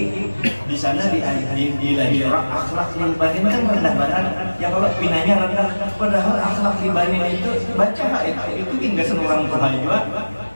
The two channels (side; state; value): both; inverted; correlation -1.00